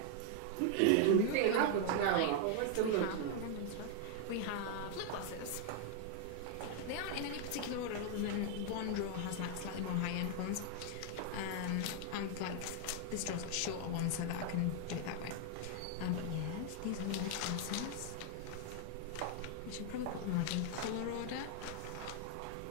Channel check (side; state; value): both; different; correlation 0.00